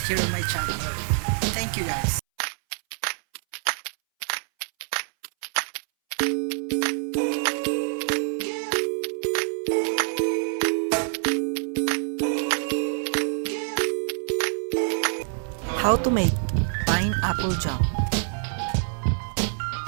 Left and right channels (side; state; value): left; silent; 61 dB below the other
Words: here on my channel. Thank you guys. How to make pineapple jam.